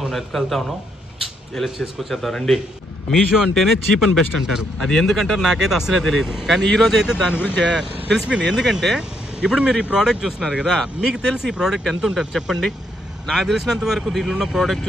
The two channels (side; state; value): both; normal; correlation 0.75